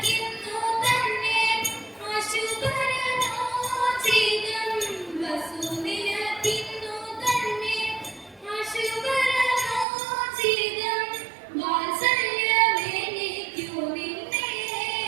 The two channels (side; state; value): left; drops out; at 9.9 s